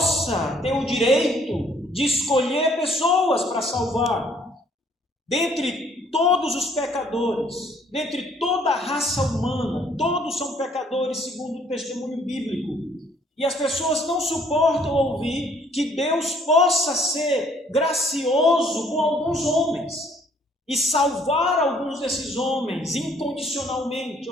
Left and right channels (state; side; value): normal; both; correlation 0.62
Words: ter o direito de escolher pessoas para salvar. Dentre todos os pecadores, dentre toda a raça humana, todos são pecadores segundo o testemunho bíblico. E as pessoas não suportam ouvir que Deus possa ser gracioso com alguns homens e salvar alguns desses homens incondicionalmente,